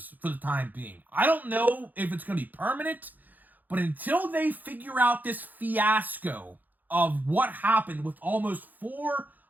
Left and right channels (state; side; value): late; left; 0.084 ms